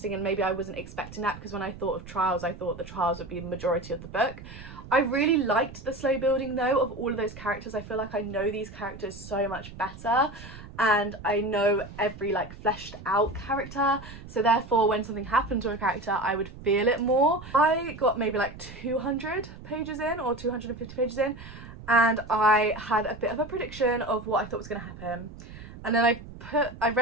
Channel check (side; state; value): right; noise; rumble, 15 dB below the sound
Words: and maybe I wasn't expecting that, because when I thought of trials, I thought the trials would be the majority of the book. I really liked the slow building though of all of those characters. I feel like I know these characters so much better, and I know every like fleshed out character, so therefore when something happened to a character I would feel it more. I got maybe like 200 pages in or 250 pages in, and I had a bit of a prediction of what I thought was going to happen, and then I